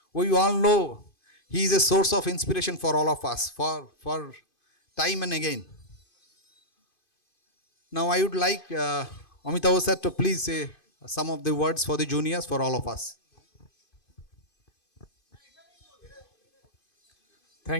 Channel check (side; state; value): right; late; 2.5 ms